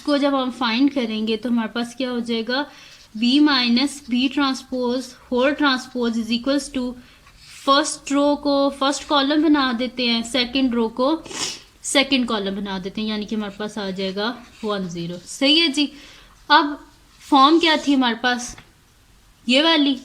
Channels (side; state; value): both; identical; correlation 1.00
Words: जब हम फाइंड करेंगे तो हमारे पास क्या हो जाएगा, B minus B transpose whole transpose is equals to, first row को फर्स्ट कॉलम बना देते हैं, सेकंड रो को सेकंड कॉलम बना देते हैं, यानी कि हमारे पास आ जाएगा 1 0। सही है जी, अब फॉर्म क्या थी हमारे पास, ये वाली,